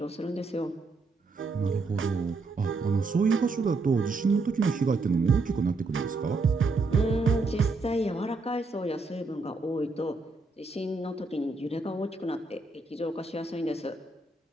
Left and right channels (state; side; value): quieter; left; 3.6 dB